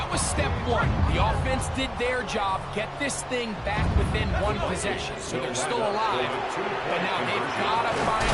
was step 1. The offense did their job, get this thing back within 1 possession. So they're still alive, but now they've got to find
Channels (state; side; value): identical; both; correlation 1.00